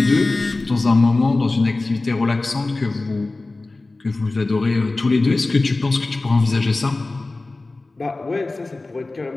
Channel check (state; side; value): quieter; right; 3.2 dB